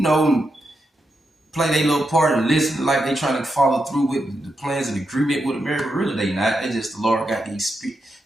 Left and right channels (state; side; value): normal; both; correlation 0.85